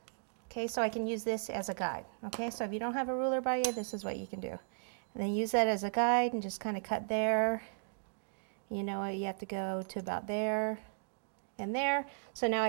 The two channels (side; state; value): left; silent; digital silence